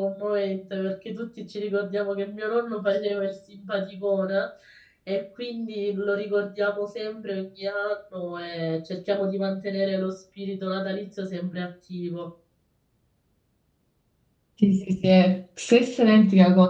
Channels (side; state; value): both; identical; correlation 1.00